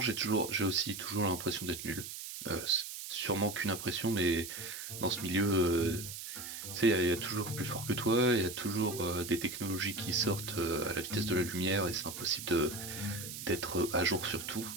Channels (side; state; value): right; noise; hiss, 9 dB below the sound